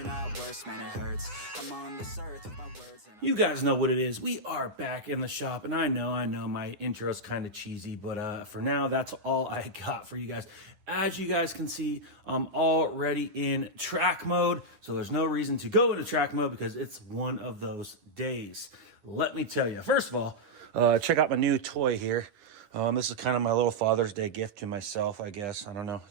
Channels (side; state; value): left; late; 9.7 ms